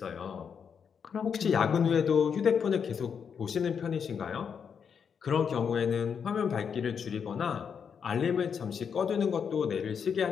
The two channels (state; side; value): quieter; right; 6.9 dB